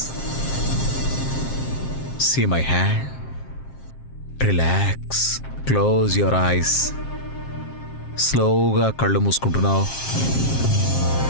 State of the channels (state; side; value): late; right; 7.5 ms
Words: See my hand. Relax. Close your eyes. స్లోగా కళ్ళు మూసుకుంటున్నావు.